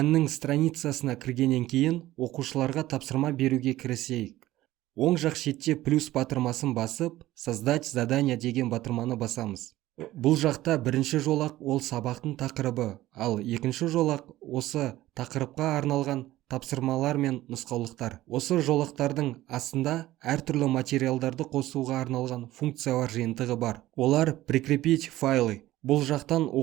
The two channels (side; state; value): left; quieter; 15.8 dB